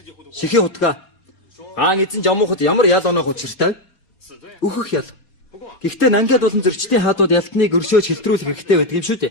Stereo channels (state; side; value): late; right; 4.3 ms